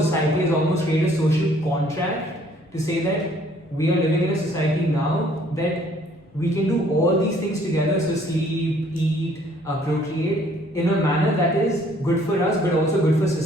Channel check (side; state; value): both; normal; correlation 0.61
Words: has almost created a social contract to say that we are living in a society now that we can do all these things together, so sleep, eat, procreate, in a manner that is good for us but also good for